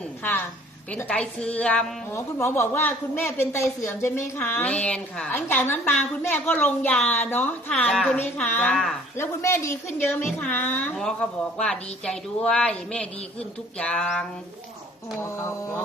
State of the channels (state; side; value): normal; both; correlation 0.54